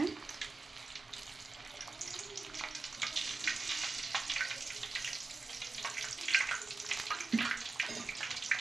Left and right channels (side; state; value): left; quieter; 3.8 dB